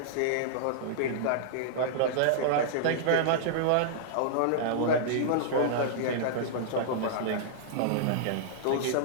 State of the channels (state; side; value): different; both; correlation -0.02